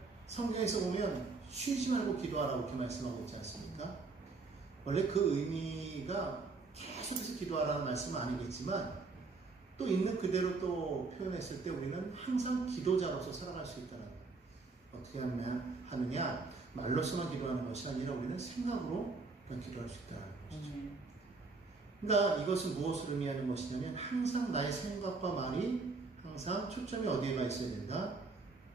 성경에서 보면 쉬지 말고 기도하라고 이렇게 말씀하고 있지 않습니까? 원래 그 의미가 계속해서 기도하라는 말씀은 아니겠지만 또 있는 그대로 또 표현했을 때 우리는 항상 기도자로서 살아갈 수 있다는 거예요. 어떻게 하느냐? 말로서만 기도하는 것이 아니라 우리는 생각으로 기도할 수 있다는 것이죠. 그러니까 이것은 무엇을 의미하는 것이냐면 항상 나의 생각과 말이 항상 초점이 어디에가 있어야 된다?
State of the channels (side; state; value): left; quieter; 4.0 dB